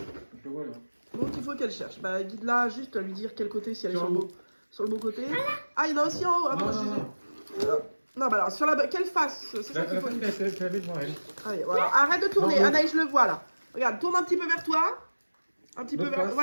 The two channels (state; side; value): inverted; both; correlation -1.00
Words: le vois là. Donc, il faut qu'elle cherche. Bah, guide-la juste à lui dire quel côté, si elle est Sur sur le beau côté. Ah, il y en a aussi en haut. Ah, Non, bon, non, non. Non, bah alors, sur quelle face? C'est ça qu'il faut. Tu l'avais devant elle. Allez, voilà. Arrête de tourner. Non, non. Anaïs, je le vois là. Regarde, tourne un petit peu vers toi. Un petit peu L'autre vers. face,